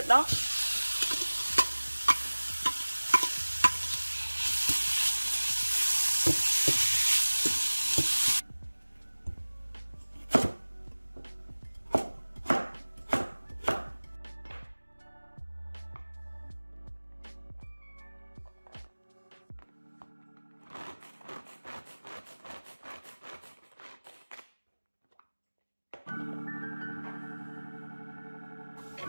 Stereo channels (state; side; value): inverted; both; correlation -1.00